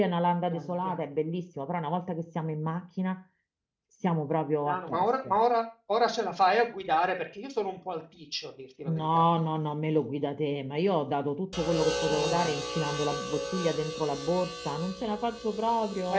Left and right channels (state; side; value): identical; both; correlation 1.00